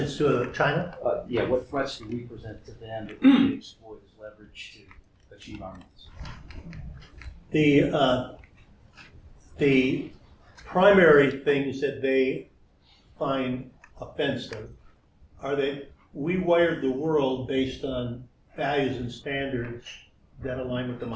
to China? yeah, what threats do we present to them that we can exploit as leverage to achieve our needs? The primary things that they find offensive are that we wired the world based on values and standards that align with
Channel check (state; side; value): identical; both; correlation 1.00